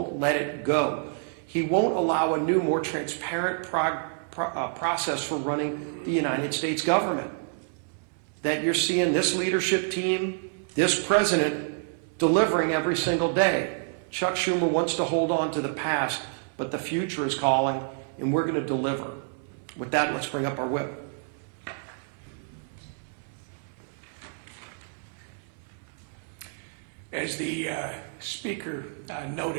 let it go. He won't allow a new, more transparent process for running the United States government. That you're seeing this leadership team, this president, delivering every single day. Chuck Schumer wants to hold on to the past, but the future is calling, and we're going to deliver. With that, let's bring up our whip. As the speaker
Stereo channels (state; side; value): silent; left; 59 dB below the other